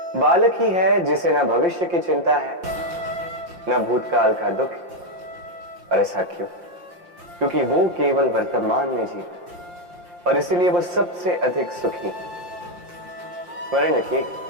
बालक ही है जिसे न भविष्य की चिंता है न भूतकाल का दुख। और ऐसा क्यों? क्योंकि वो केवल वर्तमान में जीता और इसीलिए वो सबसे अधिक सुखी। स्मरण रखिए,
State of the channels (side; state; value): left; late; 5.7 ms